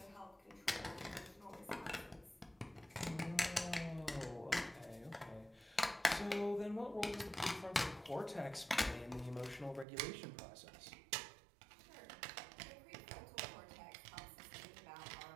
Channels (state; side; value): drops out; left; at 9.9 s